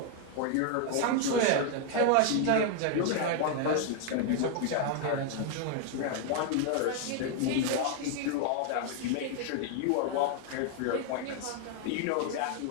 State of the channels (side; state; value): both; different; correlation 0.00